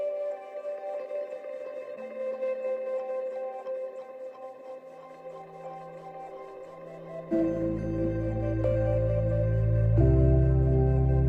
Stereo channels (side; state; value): both; identical; correlation 1.00